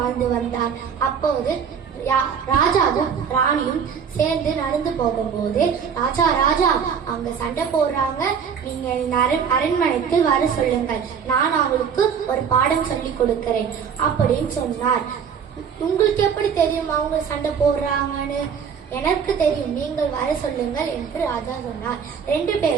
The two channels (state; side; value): quieter; left; 7.0 dB